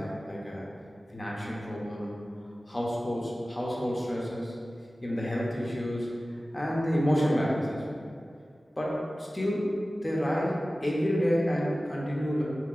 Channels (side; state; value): both; normal; correlation 0.96